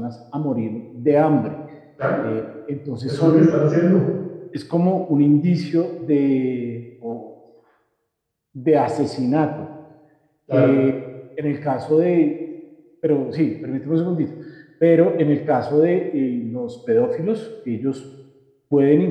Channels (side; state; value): both; identical; correlation 1.00